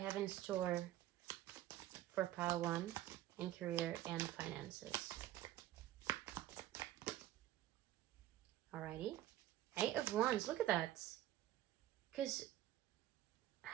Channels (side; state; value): left; quieter; 14.0 dB